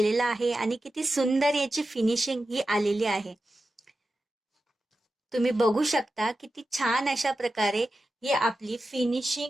आहे आणि किती सुंदर याची फिनिशिंग ही आलेली आहे. तुम्ही बघू शकता किती छान अशा प्रकारे ही आपली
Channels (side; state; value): both; normal; correlation 0.92